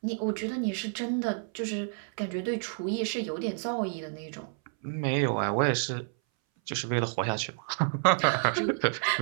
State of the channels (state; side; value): silent; left; 58 dB below the other